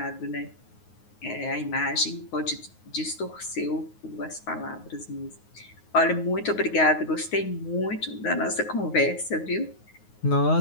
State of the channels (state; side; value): late; right; 9.5 ms